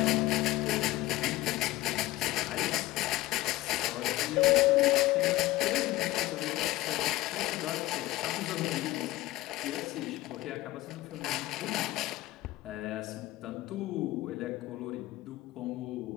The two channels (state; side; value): quieter; right; 17.4 dB